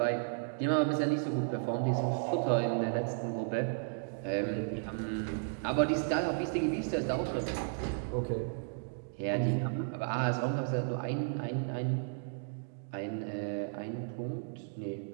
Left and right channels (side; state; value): left; silent; digital silence